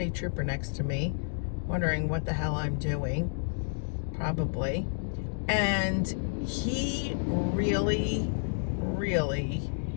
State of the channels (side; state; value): right; silent; digital silence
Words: trooper next to me, wondering what the hell I'm doing, probably. And he really,